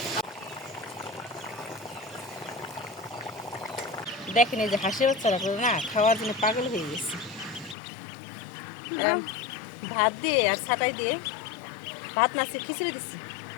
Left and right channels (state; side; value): drops out; right; at 7.8 s